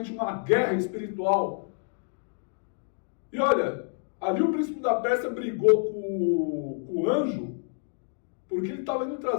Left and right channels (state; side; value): silent; right; 59 dB below the other